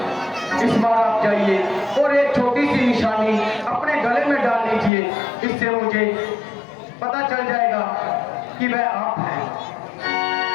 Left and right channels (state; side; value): drops out; right; at 4.9 s